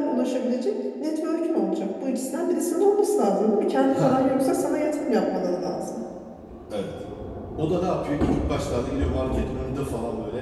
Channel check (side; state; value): both; identical; correlation 1.00